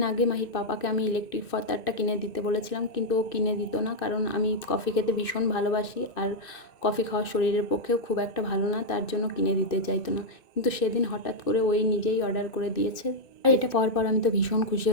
আগে মাহির পাপাকে আমি ইলেকট্রিক ফতারটা কিনে দিতে বলেছিলাম, কিন্তু ও কিনে দিত না, কারণ আমি কফি খেতে ভীষণ ভালোবাসি আর কফি খাওয়া শরীরের পক্ষেও খুব একটা ভালো না, তার জন্য কিনে দিতে চাইতো না। কিন্তু সেদিন হঠাৎ করে ওই নিজেই অর্ডার করে দিয়েছে। আর এটা পাওয়ার পর আমি তো ভীষণ খুশি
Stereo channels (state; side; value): late; right; 2.5 ms